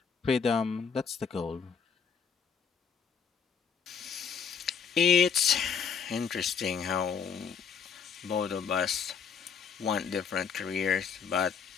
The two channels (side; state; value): right; quieter; 6.4 dB